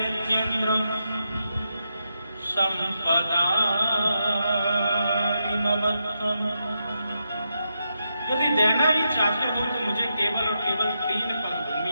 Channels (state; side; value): inverted; both; correlation -0.84